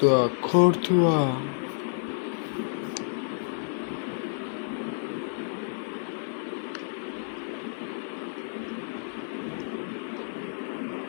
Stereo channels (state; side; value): silent; right; 58 dB below the other